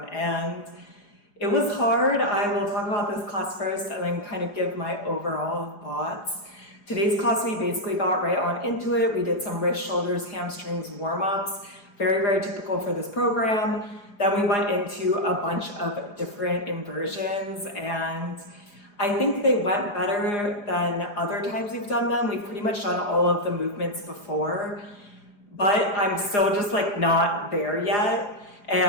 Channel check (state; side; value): late; right; 4.9 ms